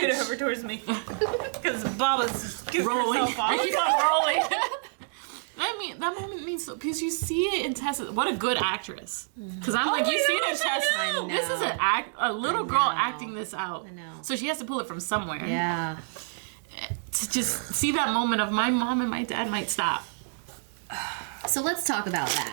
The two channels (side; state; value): left; silent; digital silence